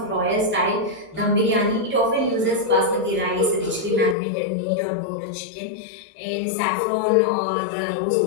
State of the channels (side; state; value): right; drops out; at 4.2 s